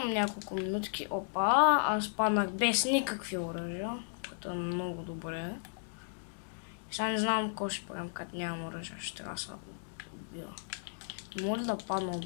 няколко минутки. Опа, аз паднах без никакви оръжия, което е много добре. Сега не знам какво ще правим, като нямам оръжия, ще трябва да се убива. Може да падна от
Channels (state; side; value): silent; right; digital silence